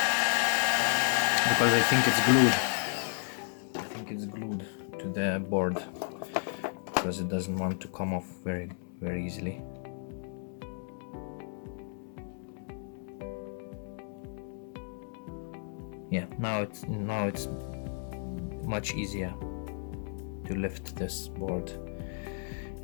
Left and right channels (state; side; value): silent; right; 56 dB below the other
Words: Because I think it's glued. To the board, because it doesn't want to come off very easily. Yeah, now it's much easier to lift this board,